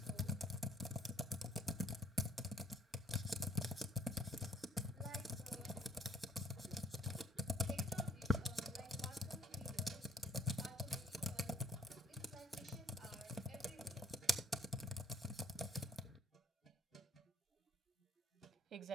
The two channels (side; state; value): both; normal; correlation 0.62